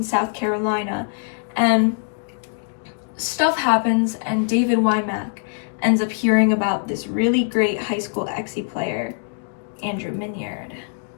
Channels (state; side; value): silent; right; 64 dB below the other